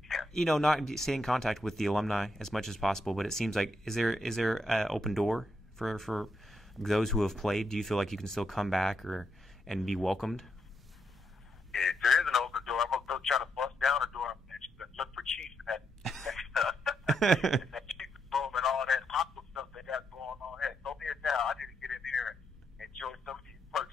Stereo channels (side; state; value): both; normal; correlation 0.81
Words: stay in contact with the alumni as much as possible. But it seems like, is there an open door for those who have played? Do you feel like you can still come back and be welcomed? Yeah, there is an open door. I'm gonna go try to bust down the door and look for Chiefs in that Chiefs room and all that aqua stuff they got going on. Hey, throw me a towel. I need to get in here and enjoy some of these